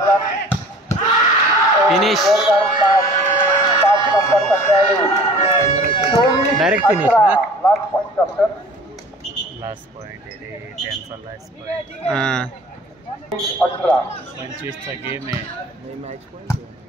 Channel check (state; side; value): normal; both; correlation 0.46